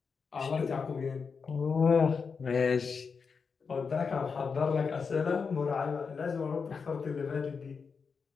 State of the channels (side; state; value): right; quieter; 5.5 dB